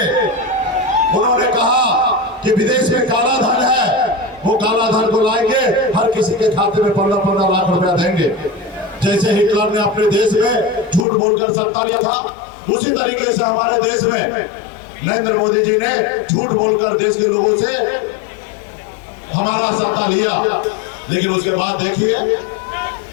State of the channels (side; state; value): right; drops out; at 11.1 s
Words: उन्होंने कहा कि विदेश में काला धन है, वो काला धन को लाएंगे, हर किसी के खाते में 15-15 लाख रुपया देंगे। जैसे हिटलर ने अपने देश में झूठ बोलकर सत्ता लिया था, उसी तरीके से हमारे देश में नरेंद्र मोदी जी ने झूठ बोलकर देश के लोगों से हमारा सत्ता लिया। लेकिन उसके बाद देखिए,